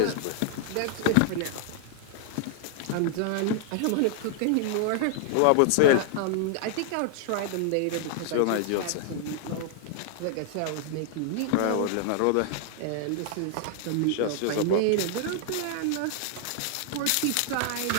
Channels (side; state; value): both; different; correlation -0.01